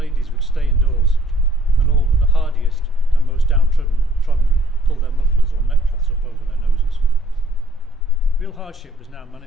would stay indoors, and all but the hardiest and most downtrodden pull their mufflers or neckcloths up over their noses. Real hardship was now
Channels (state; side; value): normal; both; correlation 0.61